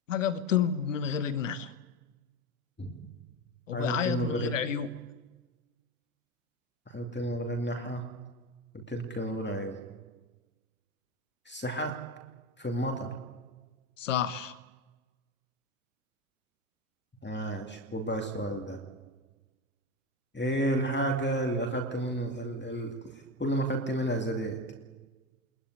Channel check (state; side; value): normal; both; correlation 0.20